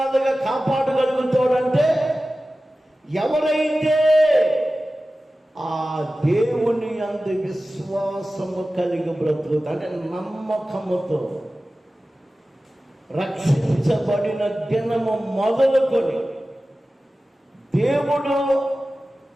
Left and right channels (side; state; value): both; normal; correlation 0.96